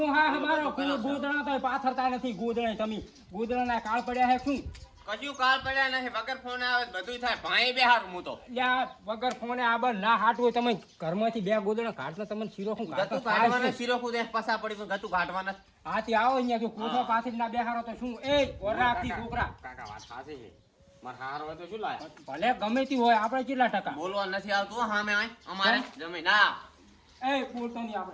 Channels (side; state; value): both; identical; correlation 1.00